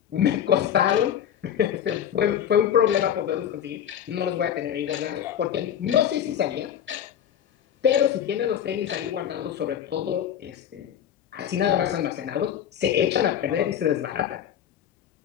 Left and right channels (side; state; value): right; quieter; 9.6 dB